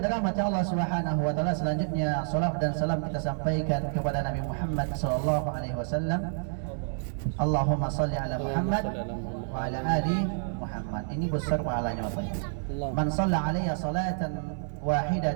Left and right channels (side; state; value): left; silent; 59 dB below the other